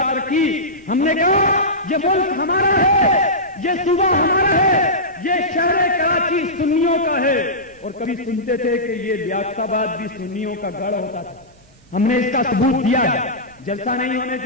رکھی۔ ہم نے کہا یہ ملک ہمارا ہے، یہ صوبہ ہمارا ہے، یہ شہر کراچی سنیوں کا ہے، اور کبھی سنتے تھے کہ یہ لیاقت آباد بھی سنیوں کا گڑھ ہوتا تھا۔ ہم نے اس کا ثبوت دیا ہے، جلسہ نہیں ہونے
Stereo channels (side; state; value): both; normal; correlation -0.15